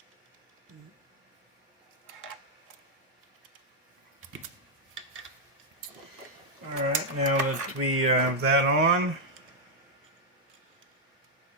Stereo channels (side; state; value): both; normal; correlation -0.02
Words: Alright, now that we have that on,